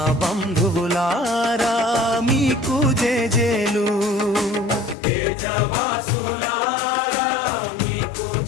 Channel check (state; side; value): drops out; right; at 5.0 s